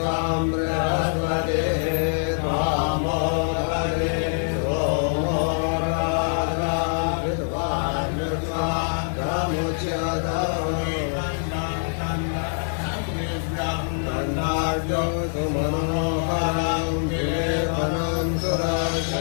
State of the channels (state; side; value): silent; right; digital silence